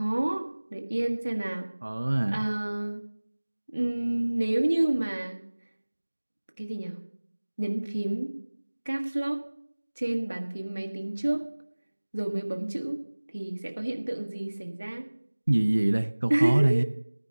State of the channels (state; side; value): inverted; both; correlation -1.00